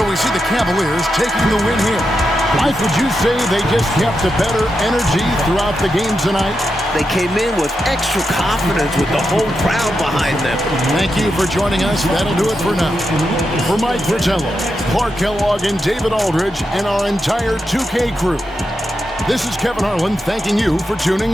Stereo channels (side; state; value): both; normal; correlation 0.86